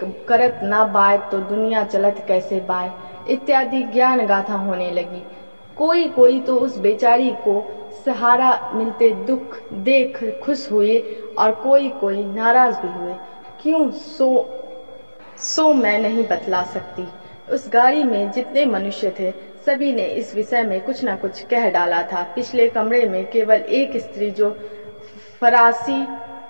करत ना बाय तो दुनिया चलत कैसे बाय, इत्यादि ज्ञान गाथा होने लगी। कोई तो उस बेचारी को सहारा मिलते दुख देख खुश हुए और कोई नाराज भी हुए। क्यों सो मैं नहीं बतला सकती। उस गाड़ी में जितने मनुष्य थे सभी ने इस विषय में कुछ न कुछ कह डाला था। पिछले कमरे में केवल एक स्त्री जो फरासी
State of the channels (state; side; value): inverted; both; correlation -1.00